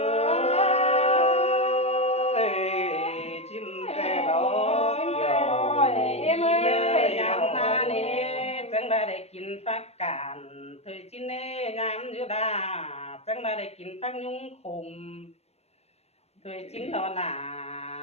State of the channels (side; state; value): right; late; 0.31 ms